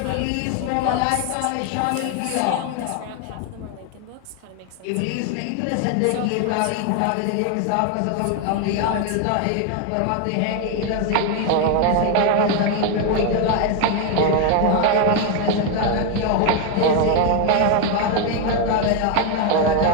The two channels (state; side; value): different; both; correlation 0.01